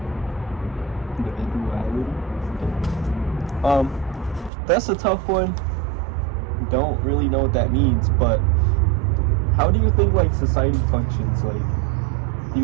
That's a tough one. Don't really know what that means, but how do you think like society functions? Like, do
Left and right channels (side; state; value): left; drops out; at 4.5 s